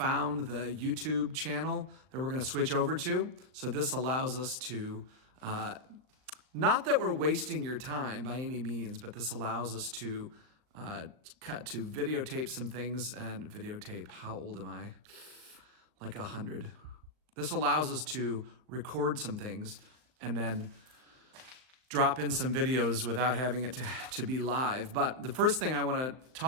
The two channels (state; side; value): late; left; 39 ms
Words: the YouTube channel that we're going to switch over to. So this allows us to, not that we're wasting your time by any means, but this allows us to videotape some things and videotape. How old am I? Like 100. This allows us to record some things and then drop in some videos without having it to be live. But the first thing I want to